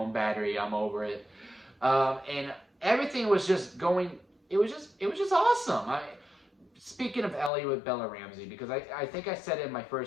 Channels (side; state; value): right; drops out; at 7.5 s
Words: battery. I'm over it. And everything was just going, it was just awesome. Speaking of Ellie with Bella Ramsey, because I think I said it in my